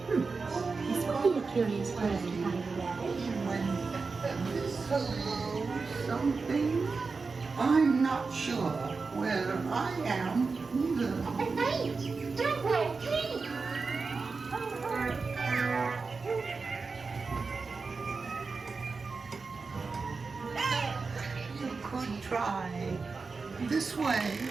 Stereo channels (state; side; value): quieter; left; 4.4 dB